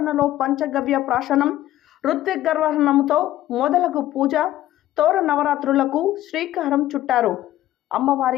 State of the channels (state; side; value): quieter; right; 14.1 dB